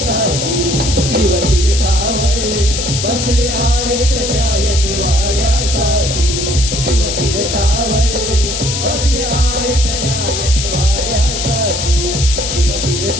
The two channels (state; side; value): noise; left; hiss, 3 dB below the sound